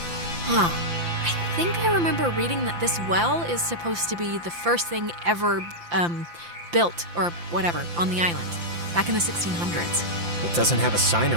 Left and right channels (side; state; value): left; late; 5.8 ms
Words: I think I remember reading that this well is supposed to be the first thing ever built, or whatever, on the island, back in the 1600s. It doesn't have a sign